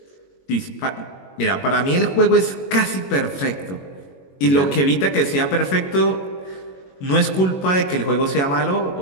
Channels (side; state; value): right; late; 21 ms